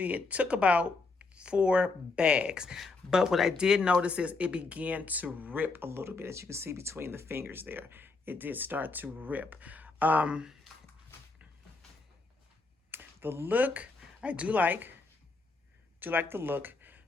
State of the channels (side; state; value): right; quieter; 3.8 dB